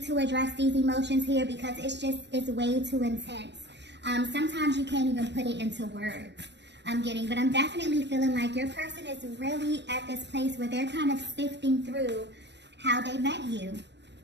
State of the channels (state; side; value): late; left; 0.51 ms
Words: to address these emotions here because it's way too intense. Sometimes you can't even put it into words. But I'm definitely feeling like your person is really at this place where they're kind of sifting through how they met you.